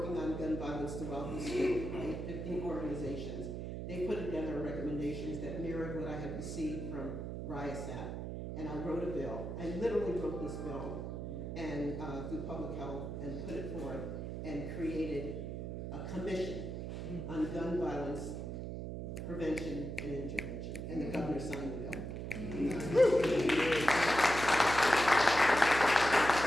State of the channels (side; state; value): right; noise; hum, 5 dB below the sound